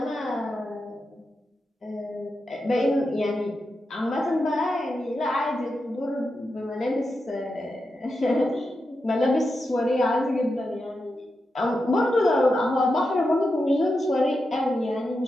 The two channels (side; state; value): both; normal; correlation 0.88